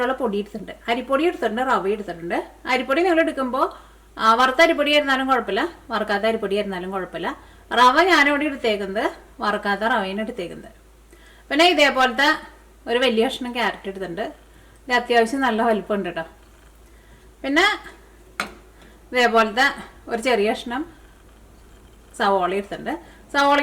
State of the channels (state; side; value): identical; both; correlation 1.00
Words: പൊടി എടുത്തിട്ടുണ്ട്. അരിപ്പൊടി എടുത്തിട്ടുണ്ട്, റവ എടുത്തിട്ടുണ്ട്. അരിപ്പൊടി നിങ്ങൾ എടുക്കുമ്പോൾ വറുത്ത അരിപ്പൊടി ആയിരുന്നാലും കുഴപ്പമില്ല, വറുക്കാത്ത അരിപ്പൊടി ആയിരുന്നാലും കുഴപ്പമില്ല. റവ ഞാനിവിടെ എടുത്തേക്കുന്നത് വറുക്കാത്ത റവയാണ് എടുത്തേക്കുന്നത്. പിന്നെ ഇതേപോലത്തെ ഒരു വലിയ കഷ്ണം ക്യാരറ്റ് എടുത്തിട്ടുണ്ട്. ഇത് അത്യാവശ്യം നല്ല വലിപ്പമുണ്ട് കേട്ടോ. പിന്നെ ഇതേപോലത്തെ ഒരു ചെറിയ കഷ്ണം സവോള എടുത്തിട്ടുണ്ട്.